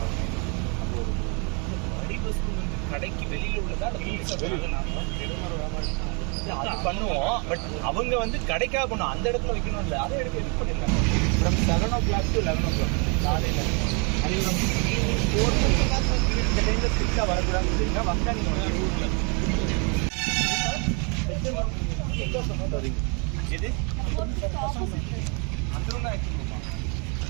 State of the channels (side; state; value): left; quieter; 34.7 dB